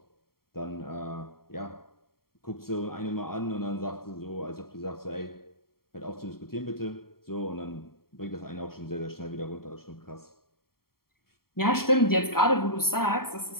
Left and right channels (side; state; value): right; late; 0.93 ms